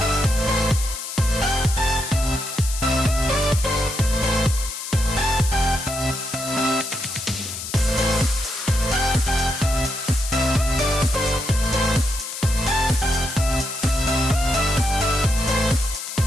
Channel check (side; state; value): left; noise; hiss, 8 dB below the sound